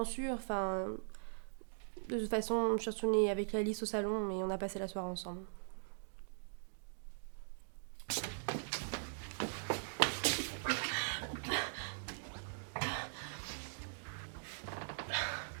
sûre, enfin... De toute façon, je suis retournée avec Alice au salon et on a passé la soirée ensemble.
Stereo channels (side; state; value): left; silent; digital silence